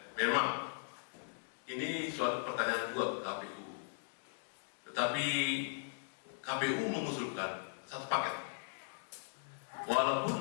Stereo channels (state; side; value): silent; right; digital silence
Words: memang ini suatu pertanyaan juga ke KPU. Tetapi KPU mengusulkan satu paket.